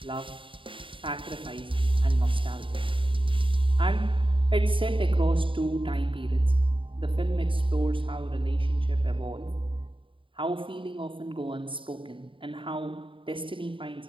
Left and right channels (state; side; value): late; left; 0.25 ms